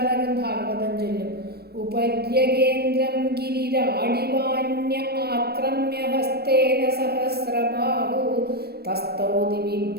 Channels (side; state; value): left; late; 0.46 ms